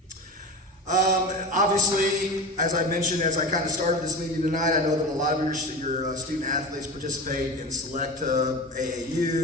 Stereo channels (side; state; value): both; normal; correlation 0.28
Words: Obviously, as I mentioned, as I kind of started this meeting tonight, I know that a lot of your student athletes participate in select